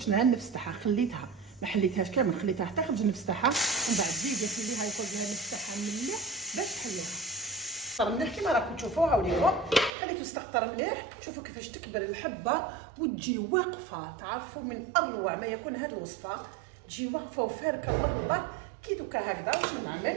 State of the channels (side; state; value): left; drops out; at 9.9 s